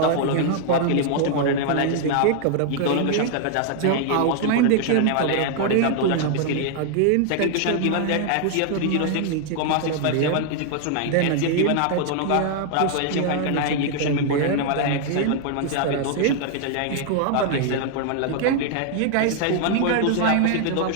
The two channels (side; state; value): both; different; correlation 0.00